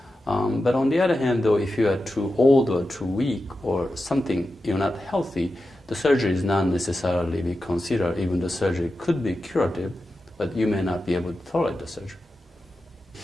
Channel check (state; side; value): normal; both; correlation 0.91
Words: But on the other hand, though, if you are too old or too weak or something, you're not healthy, the surgery is not necessarily be considered. Even the surgery could be curative, but you may not be able to tolerate the surgery.